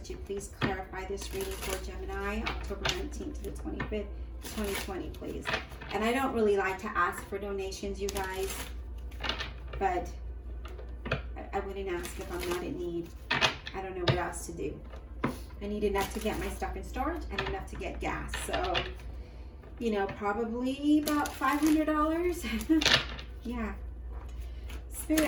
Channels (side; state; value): both; identical; correlation 1.00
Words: you please clarify this reading for Gemini, October 19th to the 25th, 2020, please. And I don't really like to ask for donations, you guys, but I wouldn't ask if I'm not in need. I don't know what else to do. I need enough to get my stuff in storage and enough to get gas. So, you know, probably about $500. Yeah.